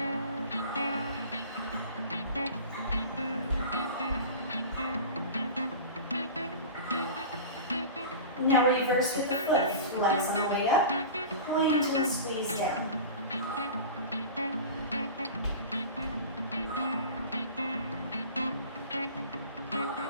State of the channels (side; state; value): both; inverted; correlation -0.34